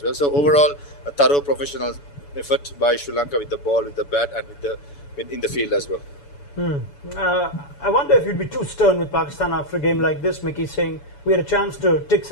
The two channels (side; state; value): right; late; 7.0 ms